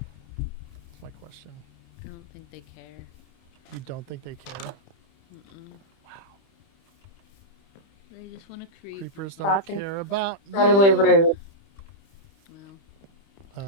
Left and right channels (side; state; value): right; late; 30 ms